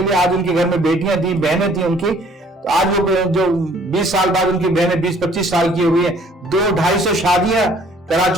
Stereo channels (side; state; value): both; normal; correlation 0.58